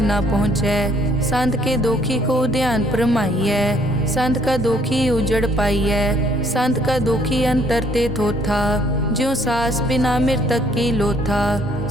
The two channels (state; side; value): normal; both; correlation 0.64